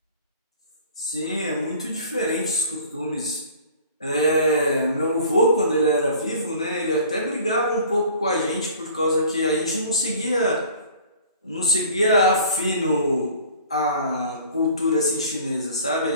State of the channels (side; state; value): both; inverted; correlation -0.48